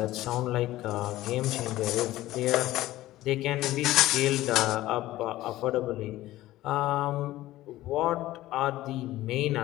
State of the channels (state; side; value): quieter; right; 15.9 dB